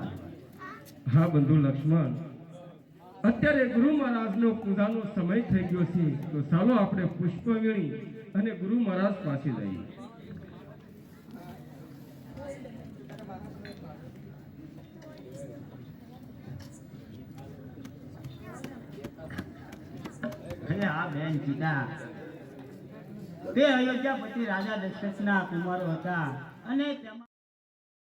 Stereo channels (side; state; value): both; identical; correlation 1.00